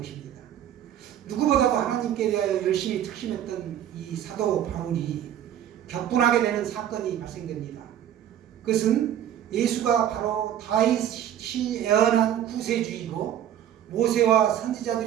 누구보다도 하나님께 대하여 열심히 특심했던 이 사도 바울이 격분하게 되는 사건이 발생됩니다. 그것은 예수가 바로 다윗이 예언한 구세주이고 모세와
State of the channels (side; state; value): left; quieter; 10.7 dB